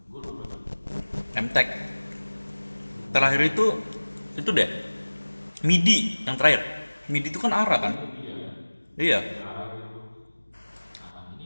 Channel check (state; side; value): inverted; both; correlation -1.00